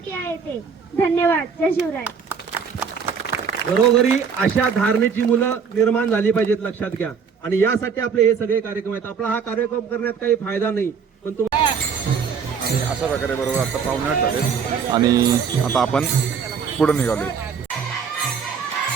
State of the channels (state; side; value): quieter; left; 6.3 dB